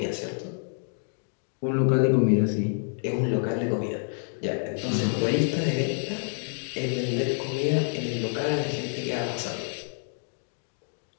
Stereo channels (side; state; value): right; silent; 59 dB below the other